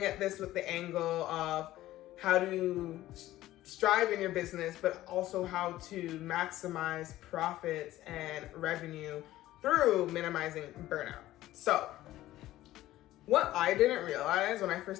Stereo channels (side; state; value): right; quieter; 15.2 dB